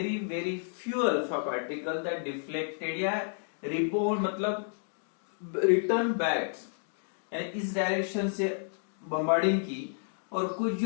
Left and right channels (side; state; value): right; silent; digital silence